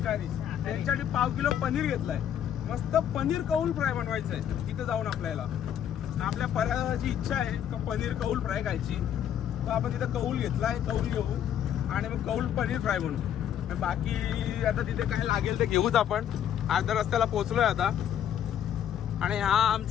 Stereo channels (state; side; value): quieter; right; 9.8 dB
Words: त्यांच्यासाठी 1/2 किलो पनीर घेतलाय। मस्त पनीर कौल फ्राय बनवायचं आहे तिथे जाऊन आपल्याला। आपल्या पर्याची इच्छा आहे का पनीर कौल फ्राय खायची, तर आपण तिथे कौल घेतलाय, कौल घेऊ आणि मग कौल पनीर फ्राय बनवू। बाकी आता तिथे काय लागेल ते घेऊच आपण। अर्ध्या रस्त्याला पोहोचलोय आता। आणि हा